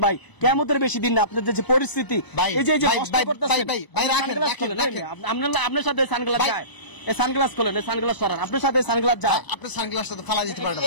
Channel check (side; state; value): right; late; 1.0 ms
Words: ভাই, কিয়ামতের বেশি দিন না। আপনার যে পরিস্থিতি, এই যে কষ্ট করতেছেন, আপনার সাথে সানগ্লাস যায়, এই সানগ্লাস খোলেন, এই সানগ্লাস সরান, আপনার সাথে সানগ্লাস যায়, আপনার সানগ্লাসটা তো ফালা দিতে পারেন।